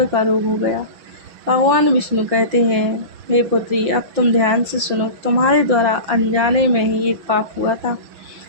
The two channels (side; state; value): left; late; 6.1 ms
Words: का रोग हो गया। भगवान विष्णु कहते हैं, हे पुत्री, अब तुम ध्यान से सुनो। तुम्हारे द्वारा अनजाने में ही एक पाप हुआ था,